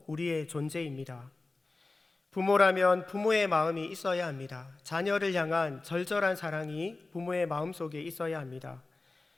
우리의 존재입니다. 부모라면 부모의 마음이 있어야 합니다. 자녀를 향한 절절한 사랑이 부모의 마음속에 있어야 합니다.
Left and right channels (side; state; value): right; quieter; 3.4 dB